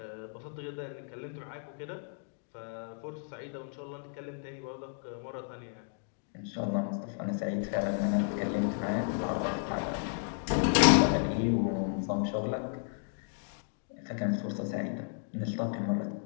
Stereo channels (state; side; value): silent; right; 55 dB below the other